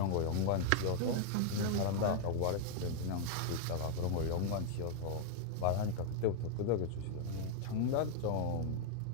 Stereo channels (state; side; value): different; both; correlation 0.00